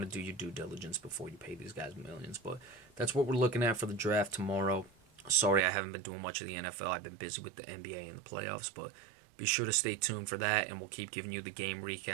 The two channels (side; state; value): left; drops out; at 5.7 s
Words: to do your due diligence before you pay these guys millions. But that's what we're looking at for the draft tomorrow. Sorry, I haven't been doing much of the NFL. I've been busy with the NBA and the playoffs, but Be sure to stay tuned for that, and we'll keep giving you the game